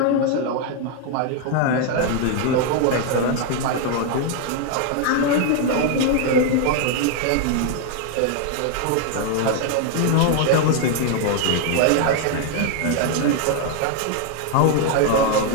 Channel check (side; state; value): both; different; correlation 0.00